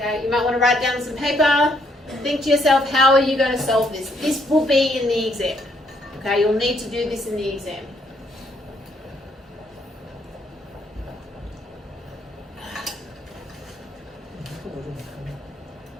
you might want to write down some paper. Think to yourself, how are you going to solve this? This will be in the exam. Okay, you'll need to do this in the exam.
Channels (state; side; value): normal; both; correlation 0.70